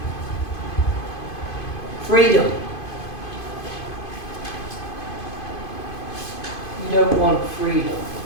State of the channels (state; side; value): late; right; 2.5 ms